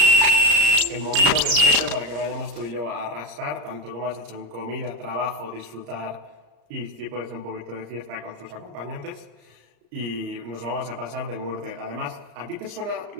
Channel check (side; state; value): left; late; 34 ms